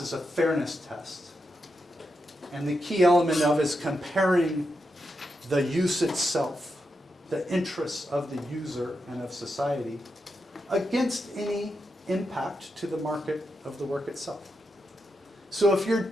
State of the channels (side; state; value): both; normal; correlation 0.86